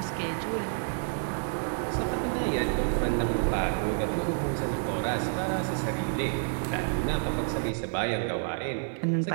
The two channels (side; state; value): left; silent; digital silence